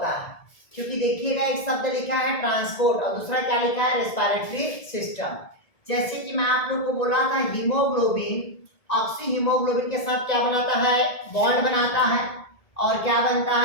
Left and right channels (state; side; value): late; right; 1.7 ms